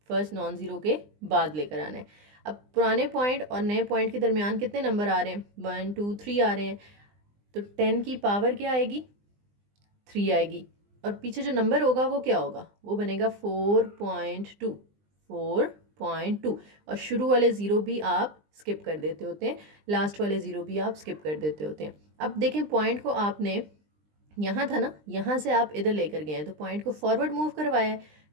फर्स्ट नॉन ज़ीरो के बाद लेकर आना है। अब पुराने पॉइंट और नए पॉइंट के दरमियान कितने नंबर आ रहे हैं? 1 2 3 आ रहे हैं। तो 10 की पावर क्या आएगी? 3 आएगी, और पीछे जो नंबर होगा वो क्या होगा? वो बनेगा 4.2। 4.2, और शुरू वाले ज़ीरो भी आप स्किप कर देते होते हैं, लास्ट वाले ज़ीरो भी आप स्किप कर देते होते हैं। अब देखें पॉइंट को आपने यहाँ था ना, यहाँ से आप इधर लेकर गए हैं, तो पॉइंट को फॉरवर्ड मूव करवाया है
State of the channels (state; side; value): late; left; 20 ms